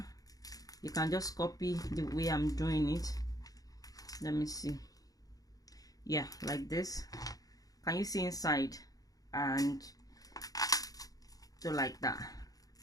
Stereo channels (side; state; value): right; late; 0.18 ms